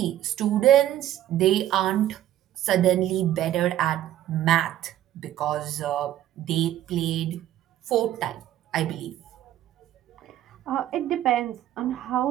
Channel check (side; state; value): left; quieter; 12.5 dB